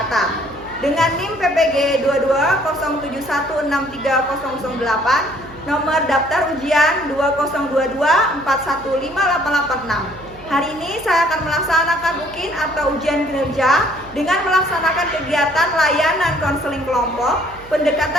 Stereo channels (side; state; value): right; noise; hum, 21 dB below the sound